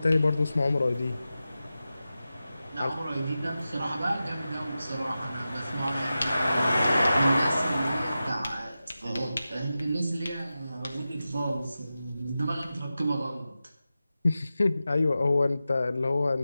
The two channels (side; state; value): both; inverted; correlation -0.93